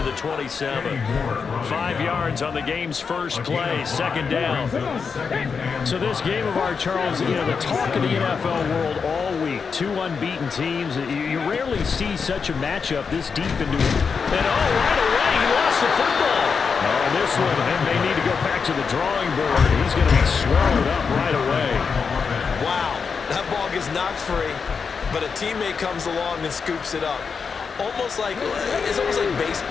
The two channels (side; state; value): right; quieter; 5.7 dB